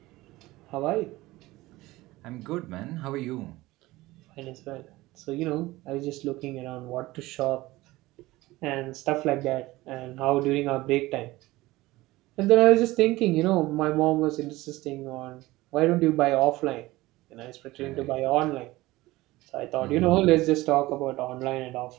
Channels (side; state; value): left; quieter; 19.0 dB